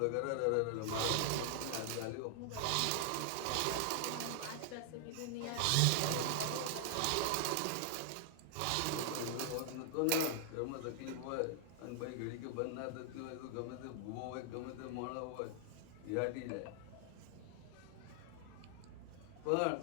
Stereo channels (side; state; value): both; different; correlation 0.00